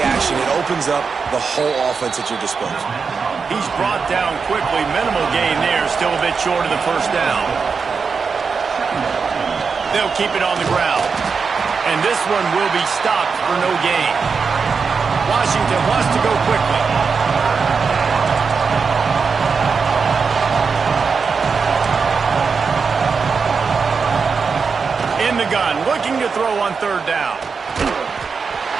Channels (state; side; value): quieter; left; 5.3 dB